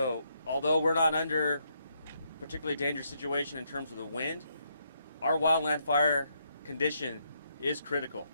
although we're not under a particularly dangerous situation in terms of the wind, our wildland fire condition is critical.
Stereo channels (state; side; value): inverted; both; correlation -0.76